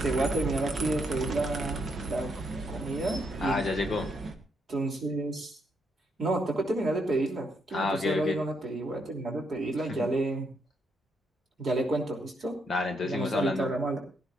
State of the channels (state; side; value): normal; both; correlation 0.76